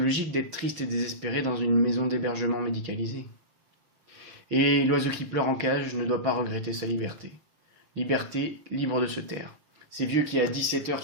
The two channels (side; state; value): left; late; 6.4 ms